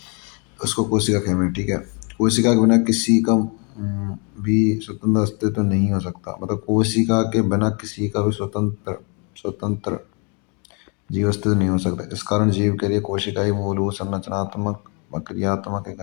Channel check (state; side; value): quieter; right; 34.2 dB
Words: उसको कोशिका कहते हैं। ठीक है, कोशिका के बिना किसी का भी स्वतंत्र अस्तित्व नहीं हो सकता। मतलब कोशिका के बिना किसी का भी स्वतंत्र स्वतंत्र जीव अस्तित्व नहीं हो सकता। इस कारण जीव के लिए कोशिका ही मूलभूत संरचनात्मक व क्रियात्मक